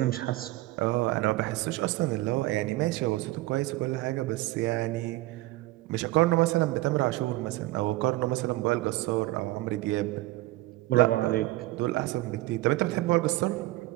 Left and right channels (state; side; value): quieter; left; 18.6 dB